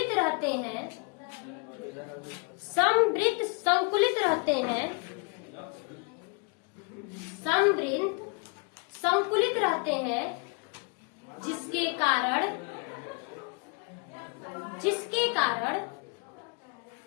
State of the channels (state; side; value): quieter; right; 35.0 dB